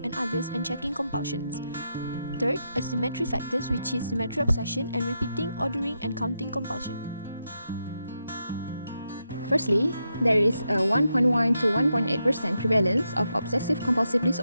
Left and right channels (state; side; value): inverted; both; correlation -0.84